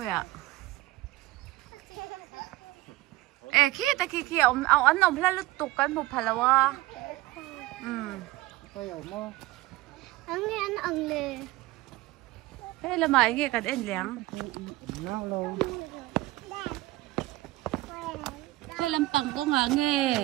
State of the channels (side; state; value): left; quieter; 18.9 dB